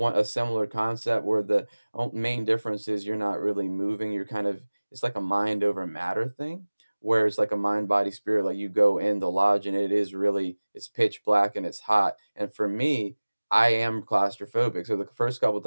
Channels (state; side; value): inverted; both; correlation -1.00